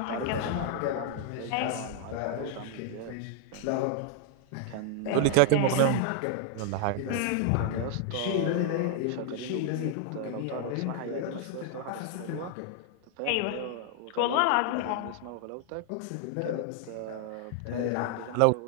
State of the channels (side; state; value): both; different; correlation 0.00